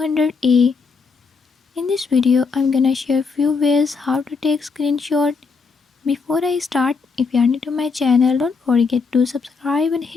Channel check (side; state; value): right; quieter; 4.9 dB